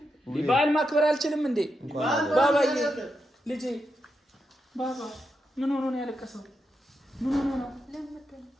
በዓል ማክበር አልችልም እንዴ? ባባዬ ልጄ ባባ ምን ሆኖ ነው ያለቀሰው? ምን ሆኖ ነው?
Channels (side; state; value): both; normal; correlation 0.85